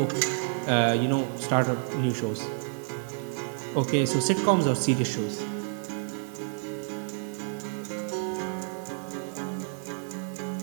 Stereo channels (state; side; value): silent; left; digital silence